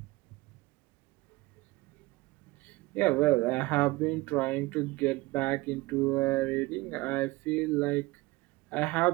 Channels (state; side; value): quieter; left; 21.2 dB